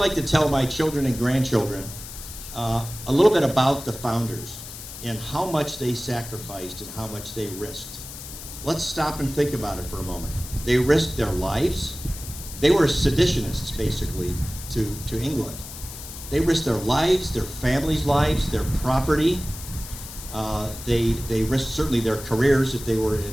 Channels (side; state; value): left; noise; hiss, 12 dB below the sound